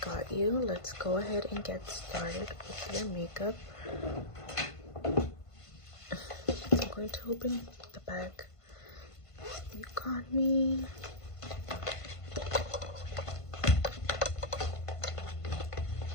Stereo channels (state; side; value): late; right; 1.5 ms